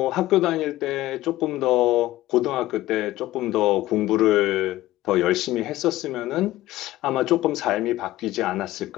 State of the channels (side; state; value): right; quieter; 16.3 dB